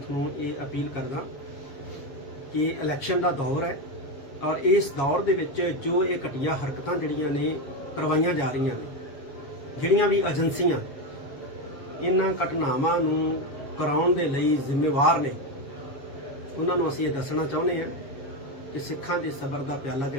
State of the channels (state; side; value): late; right; 7.2 ms